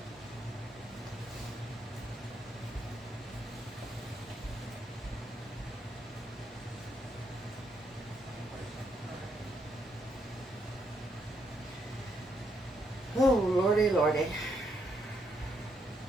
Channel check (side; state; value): both; normal; correlation 0.76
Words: Oh, lordy, lordy.